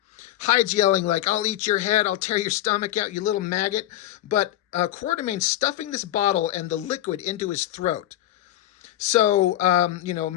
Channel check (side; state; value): right; quieter; 13.7 dB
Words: Hyde's yelling like, I'll eat your head, I'll tear your stomach out, you little maggot. But Quatermain's stuffing this bottle and the liquid into his throat. So,